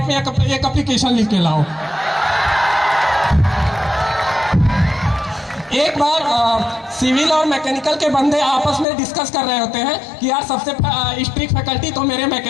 में एक एप्लीकेशन लिख के लाओ। एक बार सिविल और मैकेनिकल के बंदे आपस में डिस्कस कर रहे होते हैं कि यार सबसे स्ट्रिक्ट फैकल्टी तो मेरे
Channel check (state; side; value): drops out; right; at 8.8 s